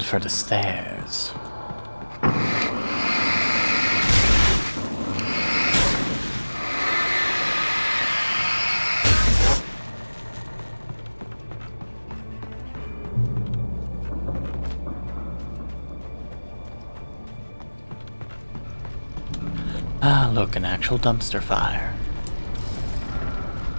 for the stairs. Ah, look, an actual dumpster fire.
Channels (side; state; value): both; inverted; correlation -1.00